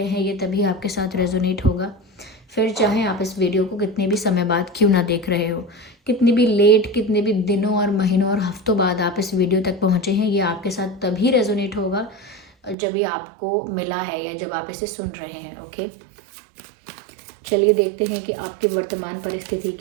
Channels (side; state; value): left; drops out; at 12.8 s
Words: हैं, ये तभी आपके साथ रेजोनेट होगा। फिर चाहे आप इस वीडियो को कितने भी समय बाद क्यों ना देख रहे हो, कितनी भी लेट, कितने भी दिनों और महीनों और हफ्तों बाद आप इस वीडियो तक पहुँचे हैं, ये आपके साथ तभी रेजोनेट होगा जब ये आपको मिला है या जब आप इसे सुन रहे हैं। ओके, चलिए देखते हैं कि आपकी वर्तमान परिस्थिति